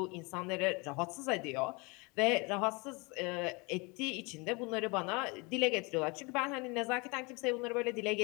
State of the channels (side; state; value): right; quieter; 28.2 dB